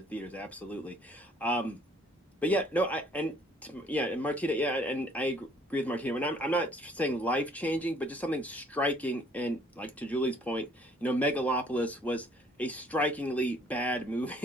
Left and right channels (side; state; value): both; normal; correlation 0.59